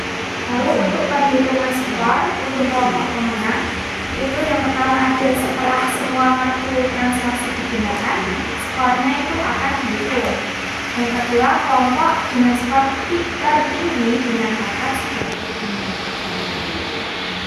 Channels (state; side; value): identical; both; correlation 1.00